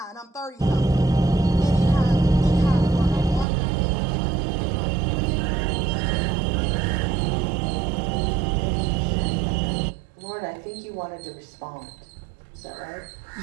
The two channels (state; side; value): drops out; left; at 3.5 s